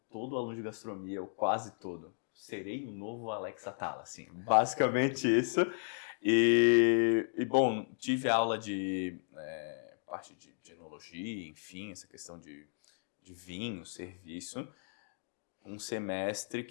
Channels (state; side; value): silent; right; digital silence